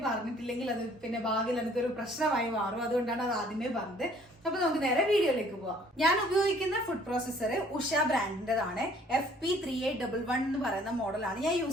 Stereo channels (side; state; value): both; normal; correlation 0.58